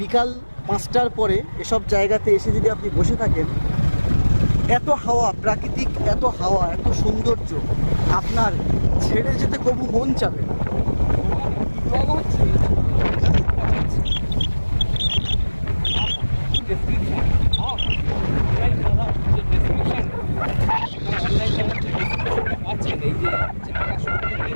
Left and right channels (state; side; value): inverted; both; correlation -1.00